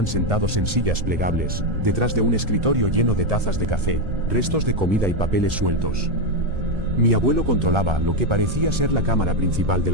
sentados en sillas plegables, detrás de un escritorio lleno de tazas de café, restos de comida y papeles sueltos. Mi abuelo controlaba lo que parecía ser la cámara principal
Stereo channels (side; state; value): left; late; 1.3 ms